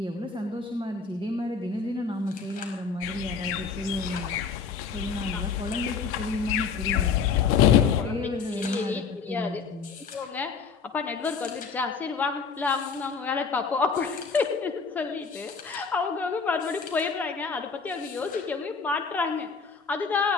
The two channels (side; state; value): right; quieter; 5.5 dB